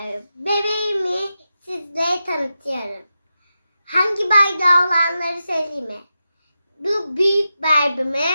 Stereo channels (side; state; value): both; inverted; correlation -0.90